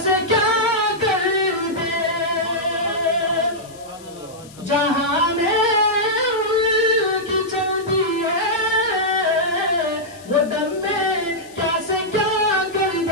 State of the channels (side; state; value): left; noise; hiss, 22 dB below the sound